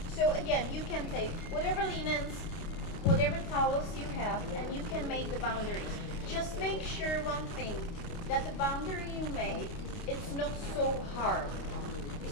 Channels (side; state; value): right; late; 29 ms